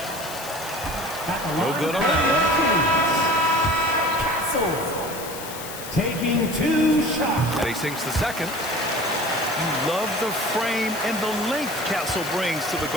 No good on that one. Castle taking 2 shots. And he sinks the second. You love the frame and the length Castle brings to the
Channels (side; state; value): left; noise; hiss, 11 dB below the sound